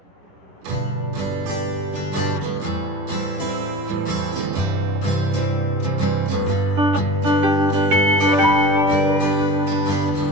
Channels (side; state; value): left; late; 10 ms